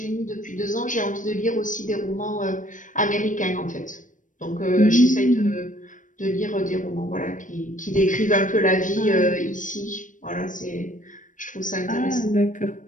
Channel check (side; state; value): right; late; 0.37 ms